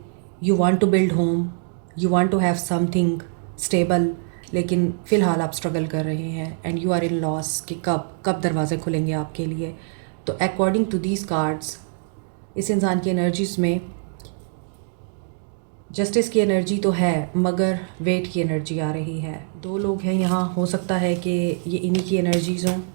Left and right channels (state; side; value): silent; left; digital silence